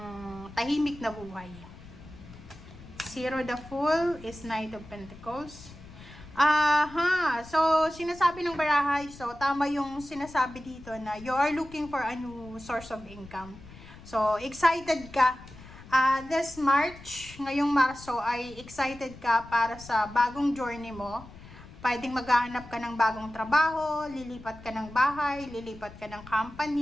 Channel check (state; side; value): noise; left; rumble, 18 dB below the sound